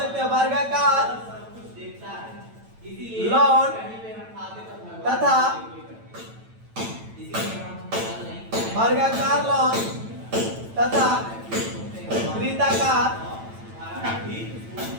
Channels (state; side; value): late; left; 9.0 ms